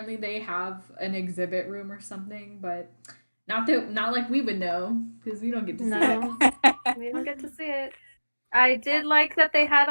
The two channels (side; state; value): both; inverted; correlation -1.00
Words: they have an exhibit room or something, but not like we would know because we don't get to see No, we don't get to see it. I did like that they had